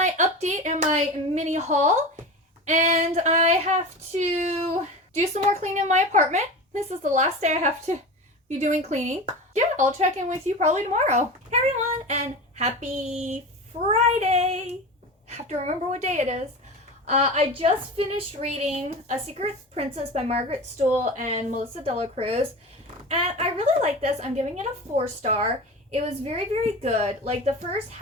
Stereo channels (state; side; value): normal; both; correlation 0.29